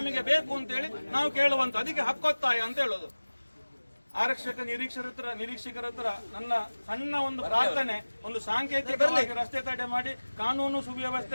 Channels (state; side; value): inverted; both; correlation -1.00